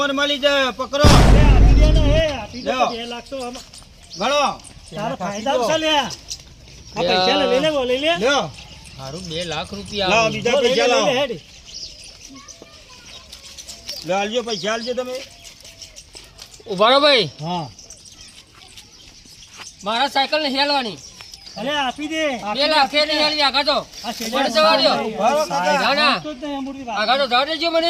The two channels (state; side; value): identical; both; correlation 1.00